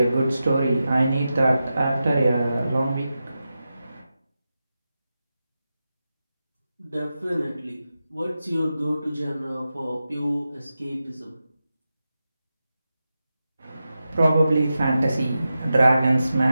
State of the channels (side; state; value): both; inverted; correlation -0.92